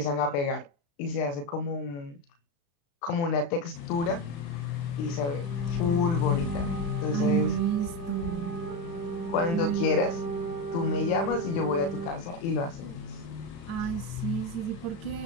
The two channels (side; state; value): right; late; 35 ms